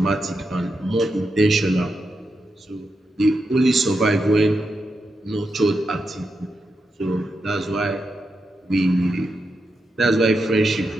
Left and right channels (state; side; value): normal; both; correlation 0.86